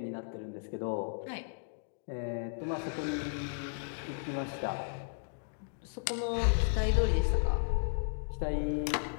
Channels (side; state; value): right; silent; digital silence